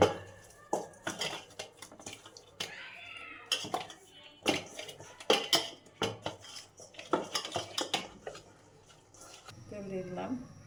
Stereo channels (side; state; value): both; identical; correlation 1.00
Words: তেল দিয়ে দিলাম।